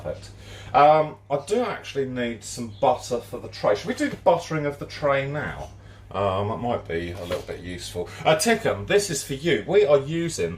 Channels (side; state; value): both; identical; correlation 1.00